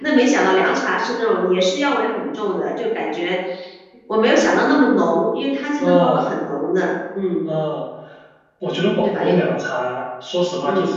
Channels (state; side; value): identical; both; correlation 1.00